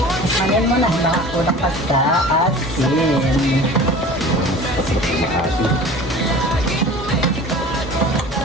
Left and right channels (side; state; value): both; normal; correlation 0.41